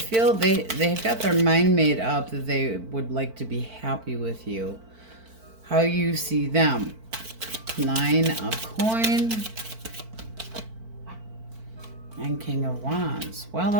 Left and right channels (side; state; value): left; late; 4.5 ms